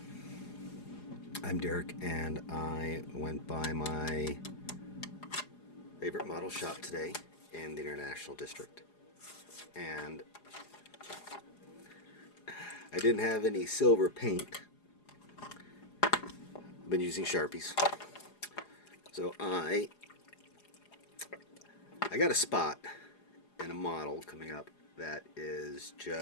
I'm Derrick, and I went by my favorite model shop today in the International District. And I didn't have any silver paint. I've been using Sharpies. So I got a spot in a model coming up that is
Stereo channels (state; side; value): late; right; 4.8 ms